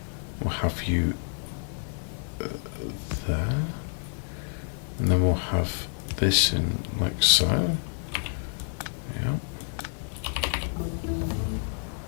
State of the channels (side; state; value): right; silent; digital silence